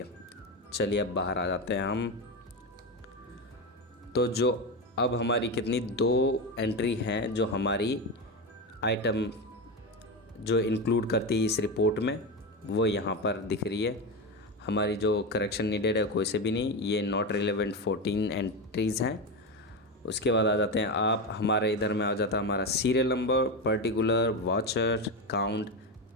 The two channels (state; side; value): normal; both; correlation 0.16